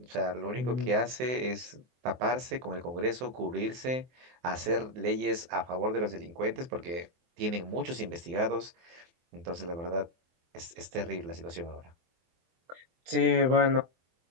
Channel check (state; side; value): late; left; 23 ms